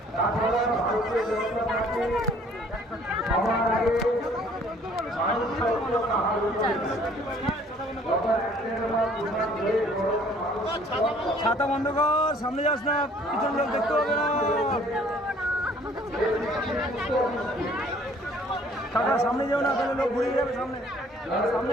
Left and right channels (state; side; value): normal; both; correlation 0.57